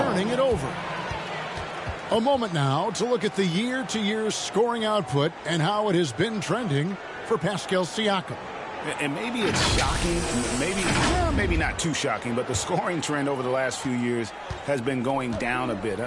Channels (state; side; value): identical; both; correlation 1.00